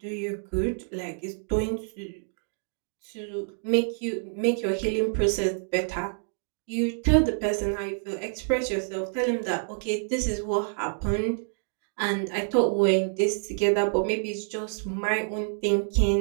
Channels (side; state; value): left; silent; digital silence